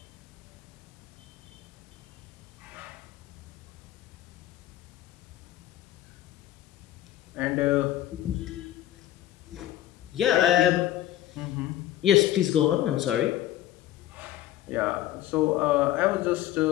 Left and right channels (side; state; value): right; quieter; 13.5 dB